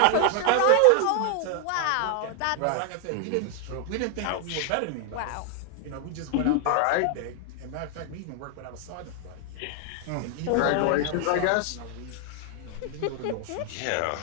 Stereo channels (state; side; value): different; both; correlation 0.00